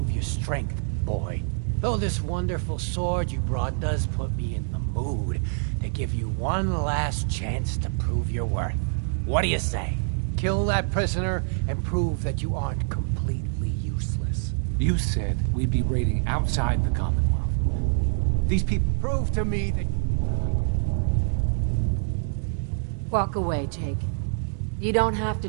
your strength, boy. Though this wonderful sword you brought does put me in the mood to give you one last chance to prove your worth. What do you say? Kill that prisoner and prove that you aren't completely useless. You said we'd be raiding outside the Commonwealth. These people... Prove to me that... Walk away, Jake. You don't have to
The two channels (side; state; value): left; silent; digital silence